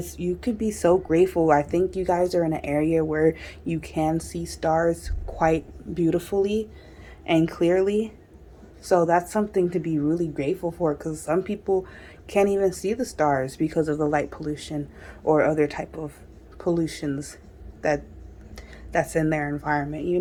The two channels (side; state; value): both; identical; correlation 1.00